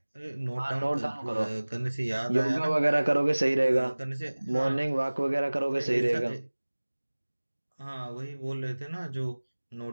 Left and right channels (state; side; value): inverted; both; correlation -1.00